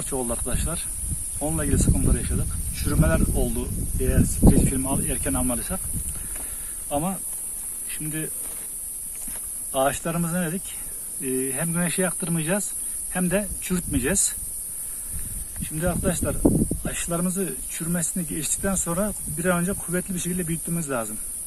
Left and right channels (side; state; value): both; identical; correlation 1.00